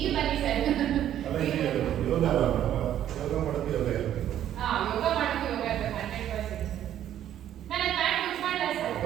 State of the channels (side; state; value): left; quieter; 11.2 dB